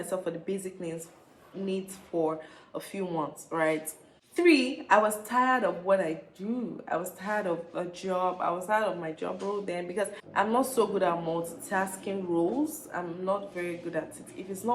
for the basic needs for a few months, right? Three, I was tired of what I do. I was tired of a job. I was tired of my job role then because I'm not so good at multitasking roles. I'm not very good at it. If it's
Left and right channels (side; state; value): both; identical; correlation 1.00